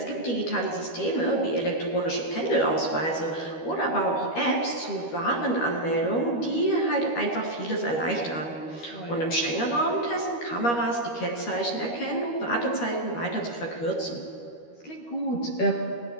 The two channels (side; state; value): right; late; 13 ms